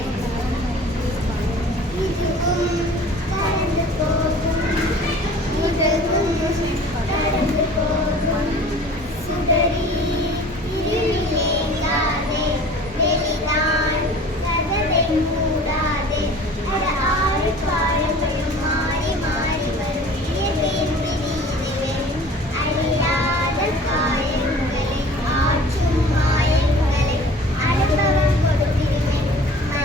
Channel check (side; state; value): both; normal; correlation 0.46